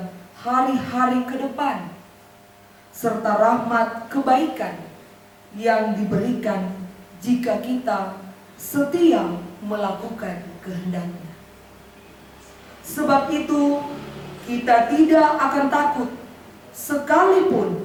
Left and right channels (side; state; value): both; identical; correlation 1.00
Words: hari-hari ke depan, serta rahmat kebaikan yang diberikan jika kita setia melakukan kehendak-Nya. Sebab itu, kita tidak akan takut